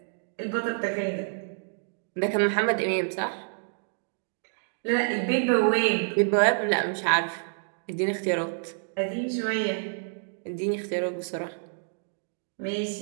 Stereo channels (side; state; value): left; silent; digital silence